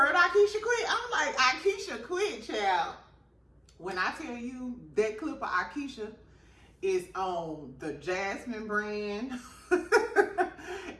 Aikisha quit? I'm like, Aikisha quit, child. When I tell you that clip of Aikisha is on the Jasmine brand.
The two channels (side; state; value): both; identical; correlation 1.00